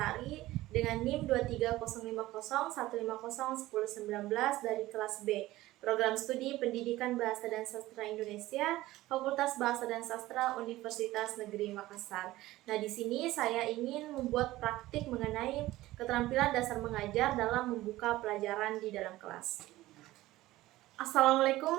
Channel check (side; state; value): left; quieter; 17.0 dB